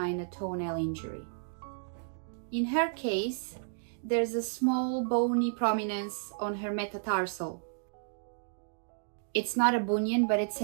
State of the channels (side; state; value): left; silent; digital silence